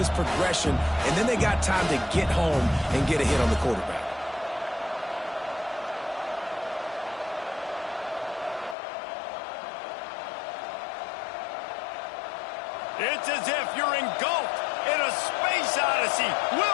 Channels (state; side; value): drops out; right; at 8.8 s